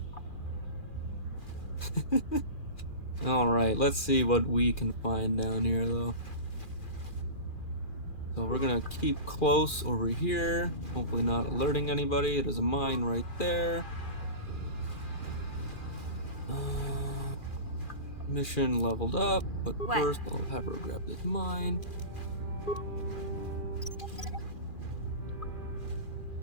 Alright, let's see what we can find down here, though. So we're gonna keep close over here, hopefully not alerting anybody. There's a mine right there. Mission leveled up, but first I'll have her grab this mine.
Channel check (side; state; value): right; late; 2.4 ms